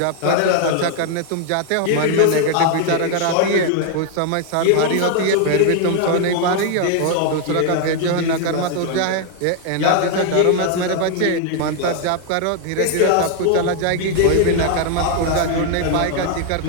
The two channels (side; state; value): both; different; correlation 0.00